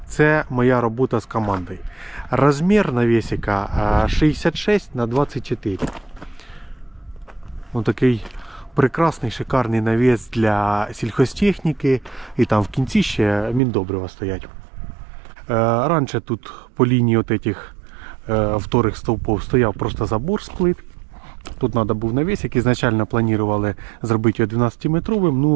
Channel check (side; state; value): left; drops out; at 13.6 s